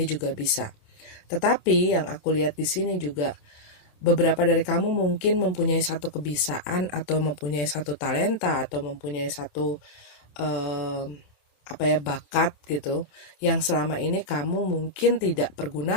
juga bisa. Tetapi yang aku lihat di sini juga beberapa dari kamu mungkin mempunyai satu kebiasaan atau mempunyai satu talenta atau mempunyai satu bakat gitu yang selama ini kamu mungkin tidak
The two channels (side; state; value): right; late; 27 ms